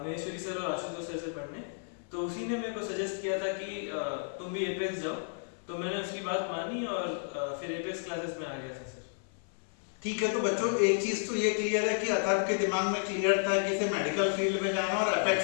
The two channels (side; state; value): right; silent; 56 dB below the other